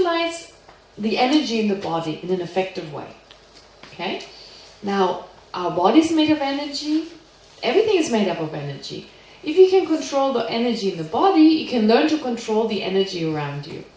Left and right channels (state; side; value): identical; both; correlation 1.00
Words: the energy in the body in an effective way. Okay? Now, our body's made of energy. Everything is made up of energy. If you can control the energy in the body, you can learn to control the energy around you.